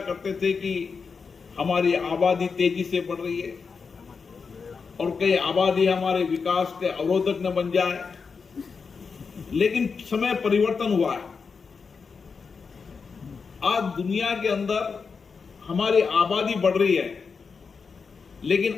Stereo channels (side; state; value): right; quieter; 5.3 dB